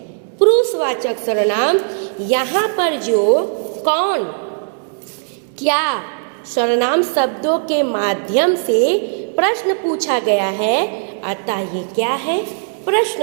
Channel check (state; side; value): silent; left; digital silence